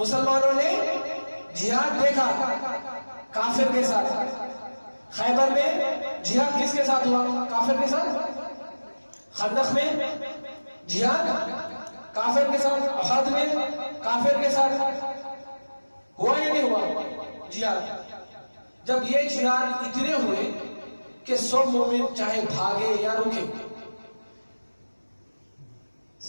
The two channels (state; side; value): inverted; both; correlation -1.00